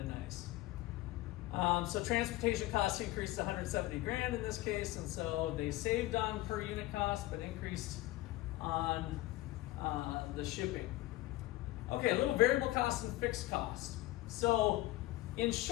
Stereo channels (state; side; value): quieter; right; 17.7 dB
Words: nice. So transportation costs increased to $170,000 in this case, and so they saved on per unit cost, but increased on the shipping. Okay, a little variable cost and fixed cost. So in